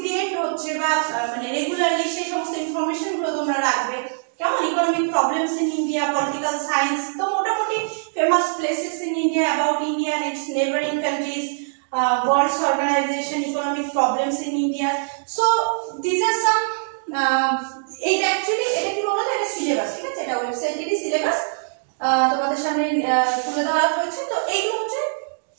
হচ্ছে বা মানে রেগুলারলি সেই সমস্ত ইনফরমেশন গুলো তোমরা রাখবে, কেমন? Economic problems in India, political science, তো মোটামুটি famous places in India, about India and its neighboring countries, world organization, economic problems in India. So these are some এটা অ্যাকচুয়ালি এটা কি বলতো, এটা সিলেবাস, ঠিক আছে? এটা ওয়েবসাইটেরই সিলেবাস তোমাদের সামনে তুলে ধরা হয়েছে। তো এইগুলো হচ্ছে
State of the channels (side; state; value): left; silent; digital silence